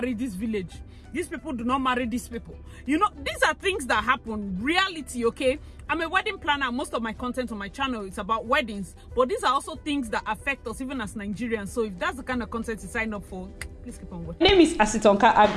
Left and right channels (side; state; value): both; identical; correlation 1.00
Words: this village. These people do not marry these people. You know, these are things that happen, reality, okay? I'm a wedding planner. Most of my content on my channel is about weddings. But these are also things that affect us even as Nigerians. So if that's the kind of content you sign up for, please keep on watching. My name is Asitonka